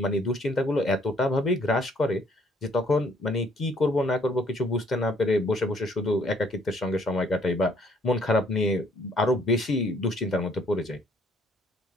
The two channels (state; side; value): normal; both; correlation 0.63